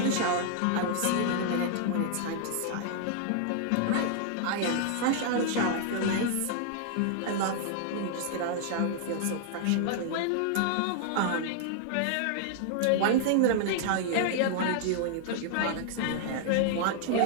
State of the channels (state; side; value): different; both; correlation 0.00